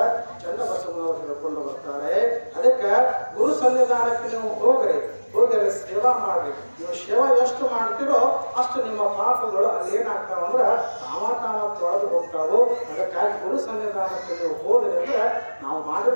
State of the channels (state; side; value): inverted; both; correlation -1.00